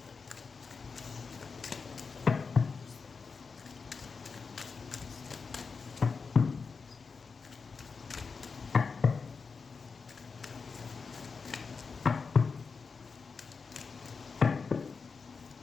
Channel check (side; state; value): right; quieter; 5.0 dB